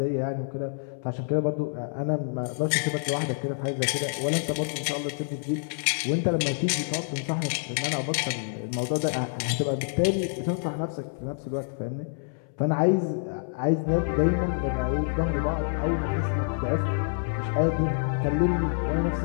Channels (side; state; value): right; silent; 60 dB below the other